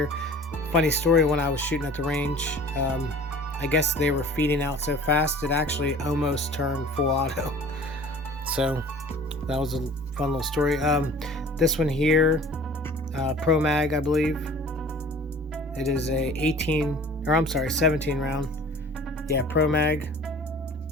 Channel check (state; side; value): normal; both; correlation 0.46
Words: Funny story, when I was shooting at the range, I guess they were feeding out so fast it actually almost turned full auto. So that was a fun little story. This one here, Pro Mag, I believe. It is a 17 round. Yeah, Pro Mag.